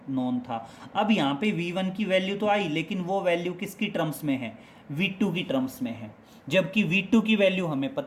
नोन था। अब यहाँ पे v1 की वैल्यू तो आई, लेकिन वो वैल्यू किसकी टर्म्स में है, v2 की टर्म्स में है, जबकि v2 की वैल्यू हमें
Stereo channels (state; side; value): identical; both; correlation 1.00